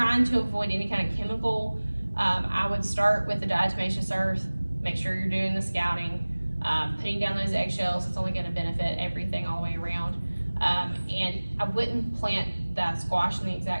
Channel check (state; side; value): inverted; both; correlation -1.00